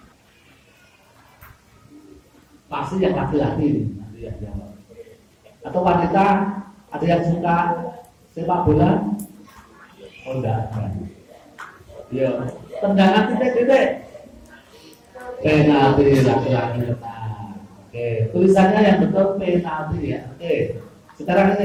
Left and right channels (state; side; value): identical; both; correlation 1.00